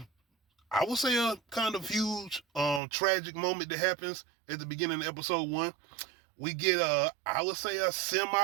would say a kind of huge, tragic moment that happens at the beginning of episode 1. We get I would say a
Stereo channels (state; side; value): drops out; left; at 2.8 s